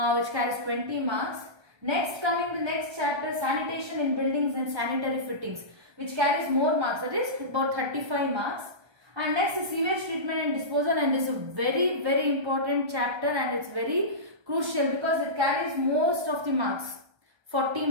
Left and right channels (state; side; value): late; left; 1.3 ms